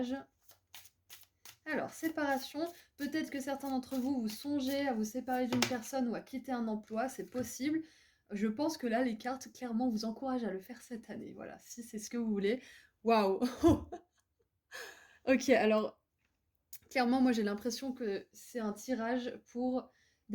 Alors, séparation, peut-être que certains d'entre vous, vous songez à vous séparer d'une personne ou à quitter un emploi, c'est possible. Je pense que là, les cartes, clairement, vous encouragent à le faire cette année. Voilà, si c'est ce que vous voulez. Waouh. Ok, alors, clairement, moi, j'ai l'impression que c'est un tirage pour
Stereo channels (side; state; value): both; identical; correlation 1.00